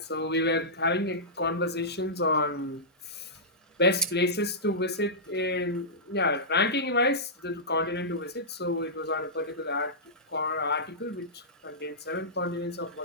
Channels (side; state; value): both; normal; correlation -0.15